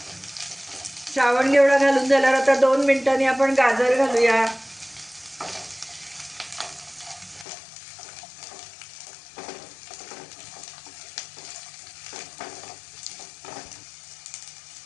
श्रावण घेवडा घालून झाल्यावर आता 2 मिनिटांनी आपण गाजर घालूया।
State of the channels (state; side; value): drops out; right; at 7.5 s